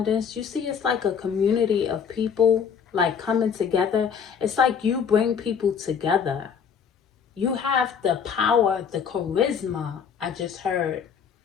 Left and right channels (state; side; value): quieter; right; 7.0 dB